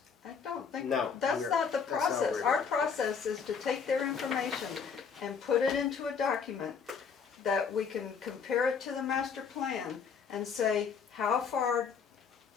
I don't think, No, that's we're- not the that's not what process. we're Our doing. process is to take their information and put it into a document that we can compare it to the master plan and say, how far,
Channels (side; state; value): right; quieter; 6.2 dB